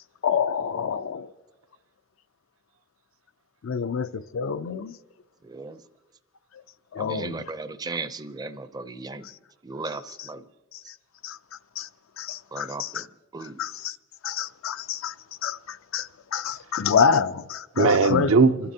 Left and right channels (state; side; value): normal; both; correlation -0.10